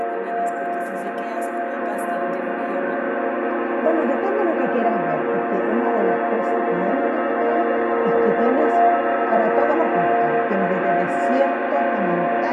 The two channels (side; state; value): both; identical; correlation 1.00